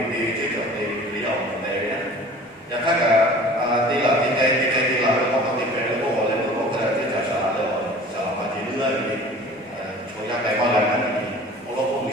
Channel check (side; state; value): both; normal; correlation 0.44